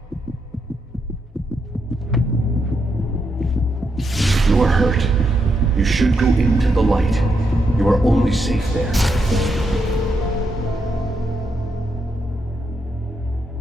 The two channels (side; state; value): both; normal; correlation 0.81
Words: You are hurt. You should go into the light. You are only safe there.